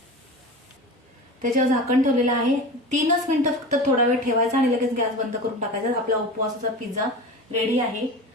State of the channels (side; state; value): both; normal; correlation 0.31